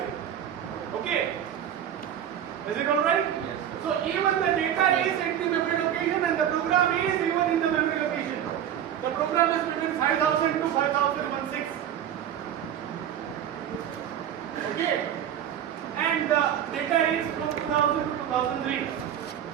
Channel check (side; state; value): left; quieter; 10.0 dB